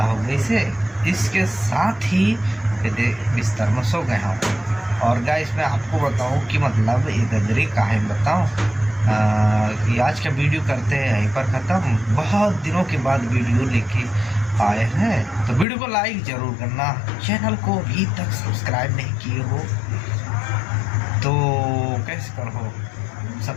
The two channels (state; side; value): drops out; right; at 15.7 s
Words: हो गई से इसके साथ ही बिस्तर में सो गया हूँ। और गाइस मैं आपको बताऊं कि मतलब ये गदरी काहे बताऊं कि आज का वीडियो करते हैं यहीं पर ख़त्म। बहुत दिनों के बाद वीडियो लेके आए हैं, तो वीडियो को लाइक ज़रूर करना, चैनल को अभी तक सब्सक्राइब नहीं किए हो तो कैसे करो,